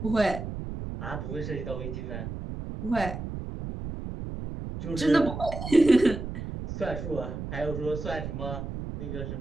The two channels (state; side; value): noise; right; rumble, 7 dB below the sound